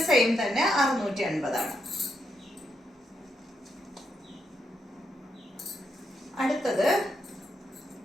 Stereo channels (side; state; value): both; normal; correlation 0.81